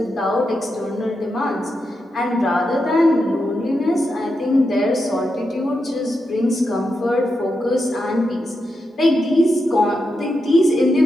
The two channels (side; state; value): both; normal; correlation 0.86